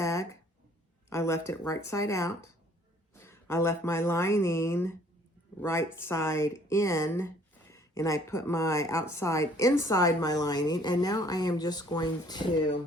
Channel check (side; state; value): both; normal; correlation 0.58